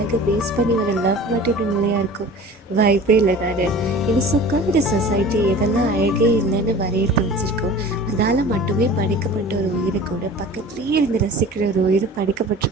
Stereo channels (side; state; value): both; normal; correlation 0.41